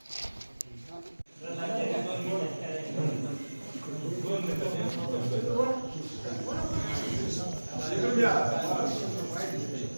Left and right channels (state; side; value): inverted; both; correlation -1.00